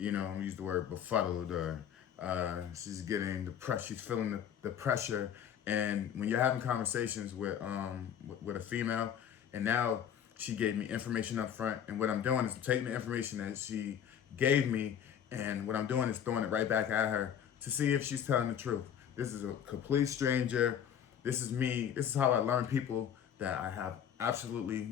the word befuddled, or she's getting the pressure. She's feeling the pressure And when you're having conversations with a female, and now she gave me information up front, and what I'm doing is I'm taking the information that she gave me, and what I'm doing is throwing it right back at her to see if she's telling the truth. This is a complete stranger. This is me. This is how I learn people that I have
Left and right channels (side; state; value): right; quieter; 9.0 dB